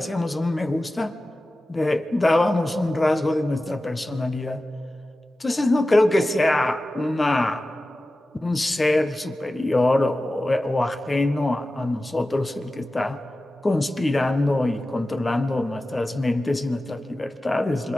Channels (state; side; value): normal; both; correlation 0.95